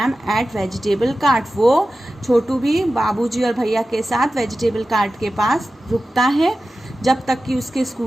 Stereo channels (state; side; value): normal; both; correlation 0.94